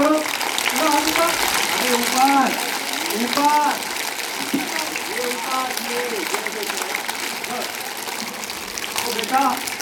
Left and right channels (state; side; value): identical; both; correlation 1.00